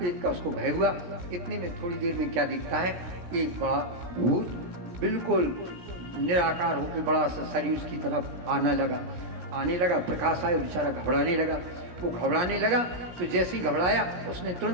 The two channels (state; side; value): late; left; 17 ms